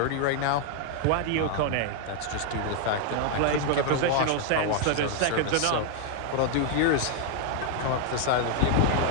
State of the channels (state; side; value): different; both; correlation 0.00